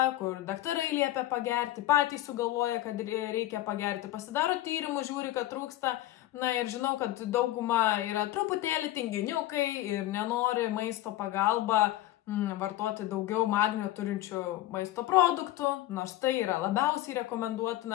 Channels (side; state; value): right; quieter; 15.0 dB